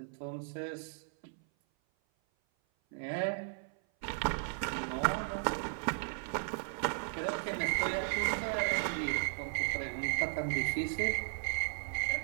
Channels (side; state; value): left; silent; 54 dB below the other